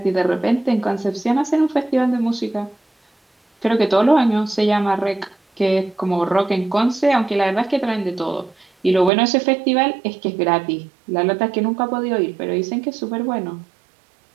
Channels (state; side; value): drops out; left; at 9.1 s